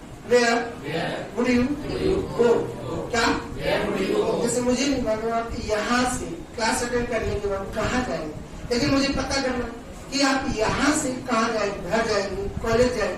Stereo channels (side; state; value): both; identical; correlation 1.00